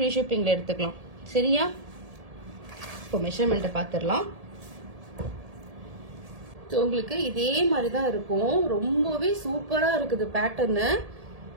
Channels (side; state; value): left; late; 1.7 ms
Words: ஷிப்பிங்ல எடுத்துக்கலாம். சரியா? இப்போ மெஷர்மெண்ட்டை பார்த்துடலாம். உங்களுக்கு இதே மாதிரி தான் இருக்கும். ரொம்பவே சூப்பரா இருக்குது பேட்டர்னு.